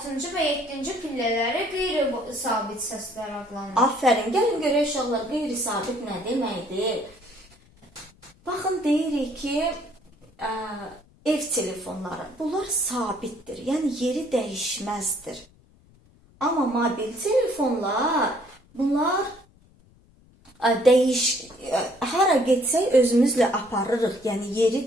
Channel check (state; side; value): noise; left; rumble, 29 dB below the sound